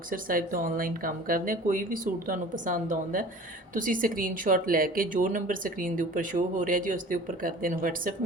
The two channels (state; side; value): normal; both; correlation 0.43